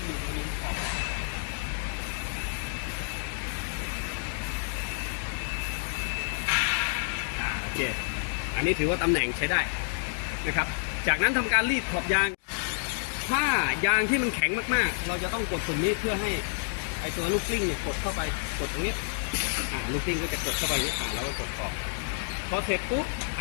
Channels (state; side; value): silent; right; digital silence